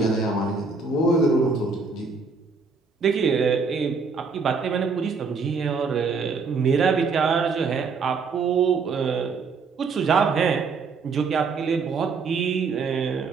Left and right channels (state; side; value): quieter; left; 4.7 dB